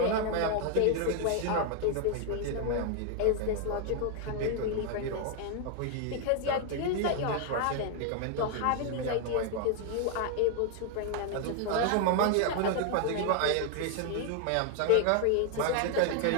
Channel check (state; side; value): different; both; correlation 0.00